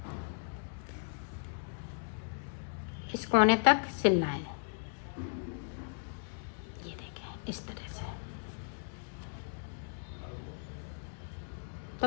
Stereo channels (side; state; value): right; silent; digital silence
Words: इस कोने तक सिलना है। ये देखें इस तरह से।